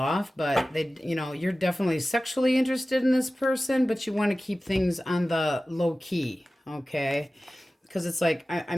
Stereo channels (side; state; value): both; normal; correlation 0.96